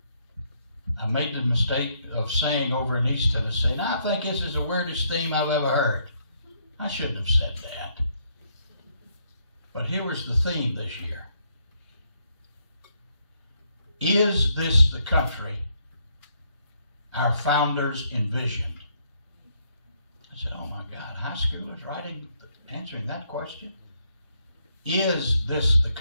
I made the mistake of saying over in East Tennessee, and I think this is the weirdest theme I've ever heard. I shouldn't have said that. But here was the theme this year. Is this the country our founders envisioned? I said, oh my God, high schoolers answering that question? Is this the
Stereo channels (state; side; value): inverted; both; correlation -0.73